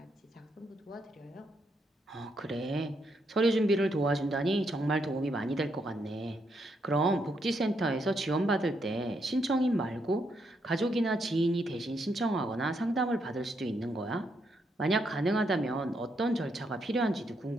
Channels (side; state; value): both; normal; correlation 0.78